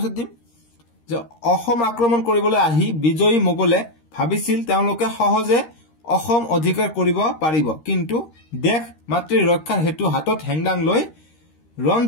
দিম যে অসম আক্ৰমণ কৰিবলৈ আহি বিজয়ী মোগলে ভাবিছিল তেওঁলোকে সহজে অসম অধিকাৰ কৰিব পাৰিব, কিন্তু দেশ মাতৃৰ ৰক্ষাৰ হেতু হাতত হেংদাং লৈ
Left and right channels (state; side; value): late; right; 13 ms